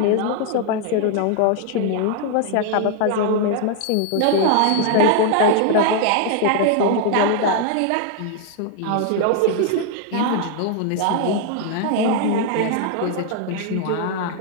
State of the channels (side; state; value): both; different; correlation 0.00